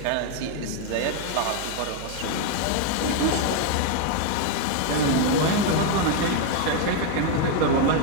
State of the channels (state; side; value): different; both; correlation 0.01